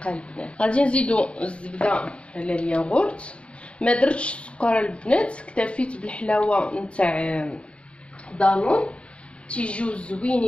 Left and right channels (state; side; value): late; right; 0.059 ms